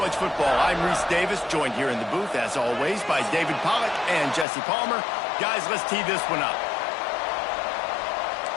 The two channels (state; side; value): drops out; right; at 4.5 s